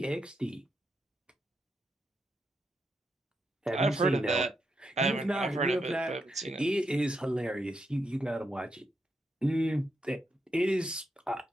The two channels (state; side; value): normal; both; correlation 0.82